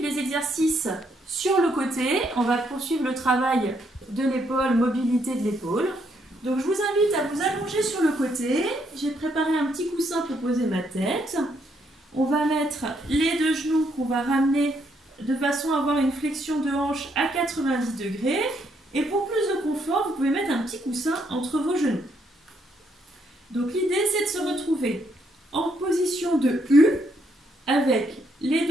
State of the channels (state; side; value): normal; both; correlation 0.73